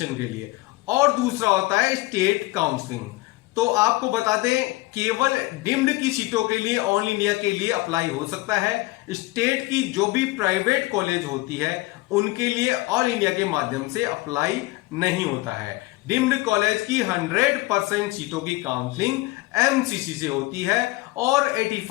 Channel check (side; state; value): right; quieter; 20.5 dB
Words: के लिए, और दूसरा होता है स्टेट काउंसलिंग। तो आपको बता दें, केवल डीम्ड की सीटों के लिए ऑल इंडिया के लिए अप्लाई हो सकता है। स्टेट की जो भी प्राइवेट कॉलेज होती है उनके लिए ऑल इंडिया के माध्यम से अप्लाई नहीं होता है। डीम्ड कॉलेज की 100% सीटों की काउंसलिंग एमसीसी से होती है और